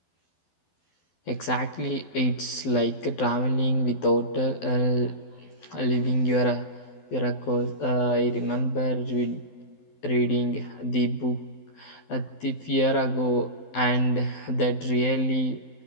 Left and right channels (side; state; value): right; late; 12 ms